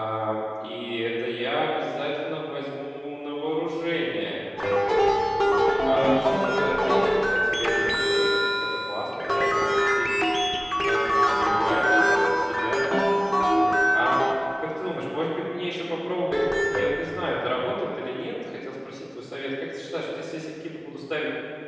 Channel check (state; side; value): identical; both; correlation 1.00